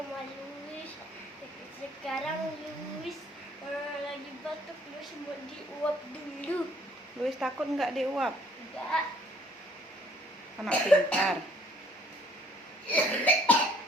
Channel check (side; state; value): both; normal; correlation 0.61